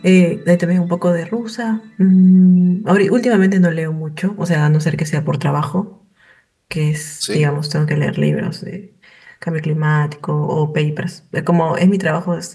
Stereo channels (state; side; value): identical; both; correlation 1.00